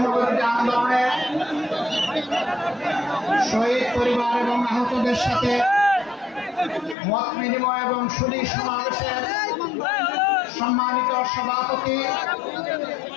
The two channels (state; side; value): drops out; right; at 7.0 s